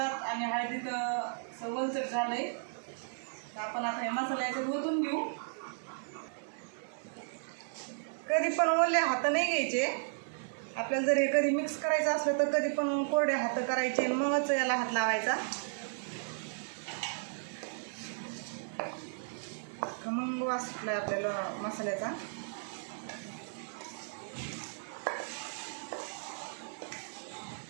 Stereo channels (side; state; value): left; silent; digital silence